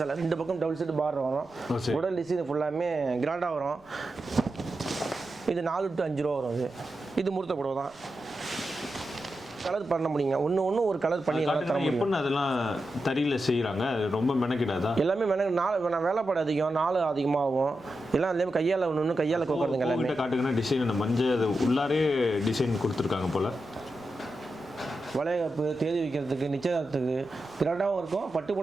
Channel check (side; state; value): right; noise; rumble, 30 dB below the sound